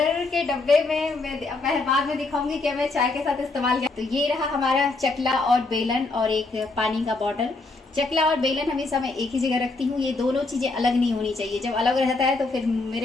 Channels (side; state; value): right; quieter; 3.5 dB